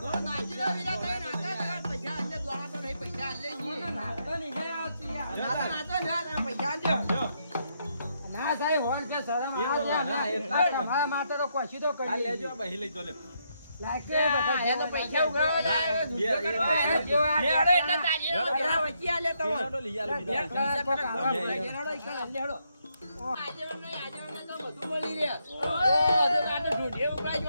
નાચીરા વિરા થઈ નાચા પૈસા અંદર દ્વારા તો નહીં પૈસા આલે જી નાચતો નહીં હે આવતી યાર નાચો ના પૈસા આલજો ના સાહેબ હોલ છે શરમ ના એટલા તમારા માટે તો કોશી તો કરી લેજો બહી લઈ તો લે લાગે બધા એને પૈસા ઉઘાવા જાય દુનિયા કરવા જો આ લેડો એટલે તાજી વચ્ચે આલે તો લેડો લઈ આલે બીજા લેડો ઈકણ લેડો આજે તો બધું મળી રહે. ઓય, તો કાંટે ઢૂંઢીએ ઉપરા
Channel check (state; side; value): inverted; both; correlation -0.77